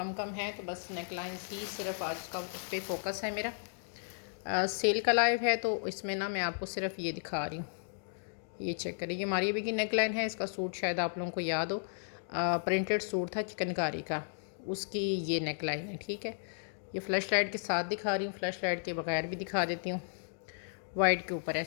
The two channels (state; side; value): silent; right; digital silence